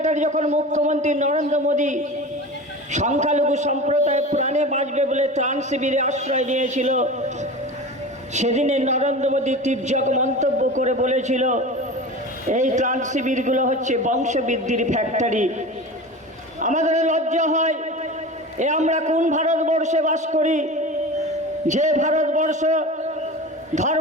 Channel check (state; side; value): normal; both; correlation 0.32